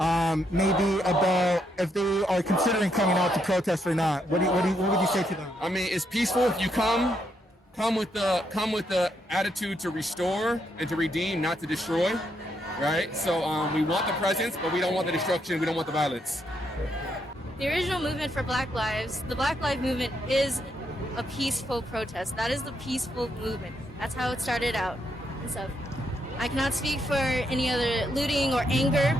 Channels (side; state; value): both; normal; correlation 0.77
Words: Maybe about if they are considering coming out to protest or not. What would you say to them? I mean, it's peaceful. If you come with the attitude to restore and to redeem, not to destroy, right? So we want the presence, but we don't want the destruction. We don't want the violence. The original movement for Black Lives, the Black Lives Movement, is a peaceful protest. That is the peaceful movement. That's how it started out and stuff. I cannot speak for any other looting or anger